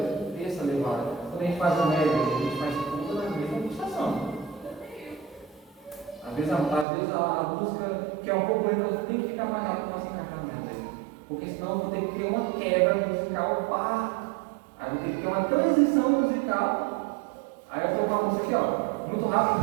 essa levada. Quando a gente faz o médio, a gente faz tudo na mesma pulsação. Às vezes a música, que é um pouco lenta, tem que ficar mais rápido para se encaixar no médio. Porque senão eu vou ter que ter uma quebra musical, aí eu vou ter que ter uma transição musical. Aí eu estou com a música aqui, ó, muito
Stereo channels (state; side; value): drops out; left; at 6.9 s